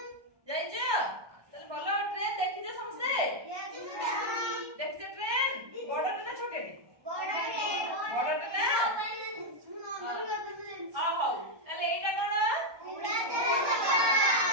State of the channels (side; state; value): left; late; 1.2 ms